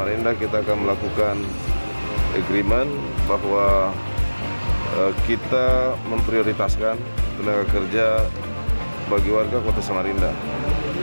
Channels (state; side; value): inverted; both; correlation -1.00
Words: kita akan melakukan agreement bahwa kita memprioritaskan tenaga kerja bagi warga Kota Samarinda.